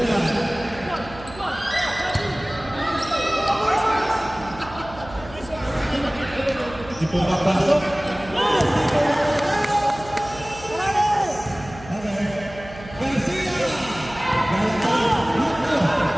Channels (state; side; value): noise; right; hum, 17 dB below the sound